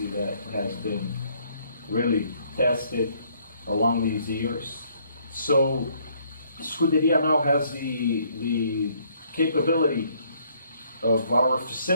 that has been really tested along these years. So Scuderia now has the capability of our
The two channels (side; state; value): both; inverted; correlation -0.66